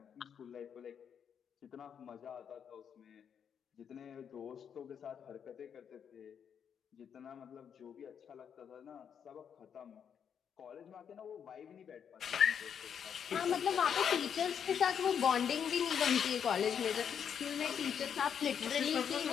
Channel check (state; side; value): quieter; right; 7.8 dB